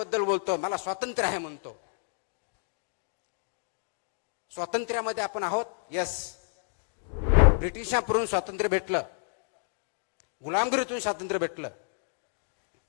बोलतो, मला स्वातंत्र्य आहे म्हणतो. स्वातंत्र्यामध्ये आपण आहोत, यस. ब्रिटिशांकडून स्वातंत्र्य भेटलं, गुलामगिरीतून स्वातंत्र्य भेटलं.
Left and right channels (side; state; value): right; silent; digital silence